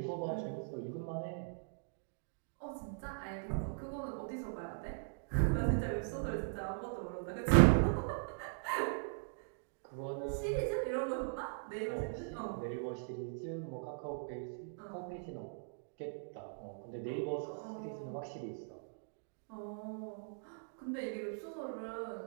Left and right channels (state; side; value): silent; left; digital silence